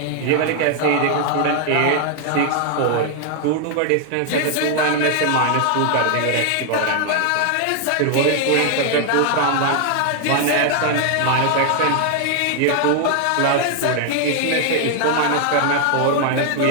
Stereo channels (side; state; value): both; different; correlation 0.00